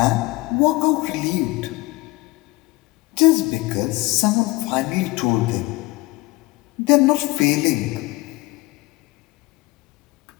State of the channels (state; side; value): quieter; right; 22.1 dB